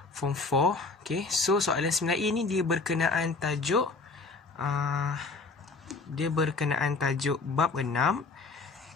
Form 4. So, soalan 9A ni dia berkenaan tajuk bab 6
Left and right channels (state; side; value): quieter; right; 3.9 dB